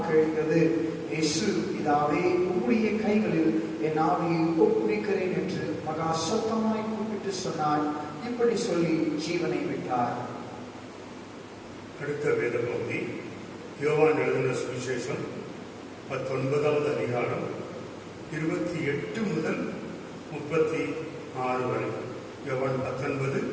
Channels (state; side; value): identical; both; correlation 1.00